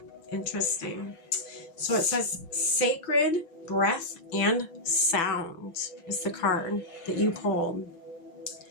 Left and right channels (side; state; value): right; late; 6.1 ms